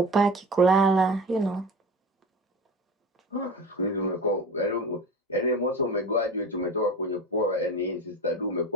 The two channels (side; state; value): both; normal; correlation 0.32